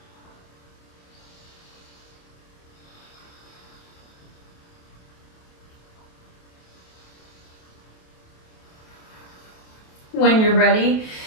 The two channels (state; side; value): late; right; 28 ms